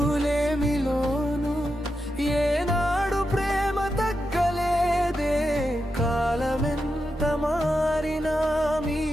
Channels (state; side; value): normal; both; correlation 0.88